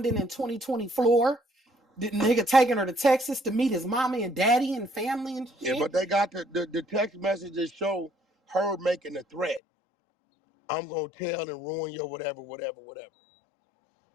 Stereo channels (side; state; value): right; drops out; at 9.6 s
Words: in 2020 floor, the nigga taking her to Texas to meet his mommy and daddy and family and shit. Yeah, but they got the text messages show her making a threat. I'm gonna tell and ruin your whatever.